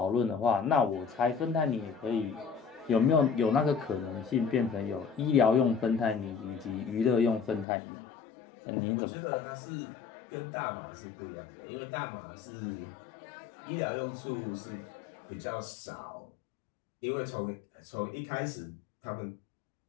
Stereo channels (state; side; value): drops out; right; at 7.7 s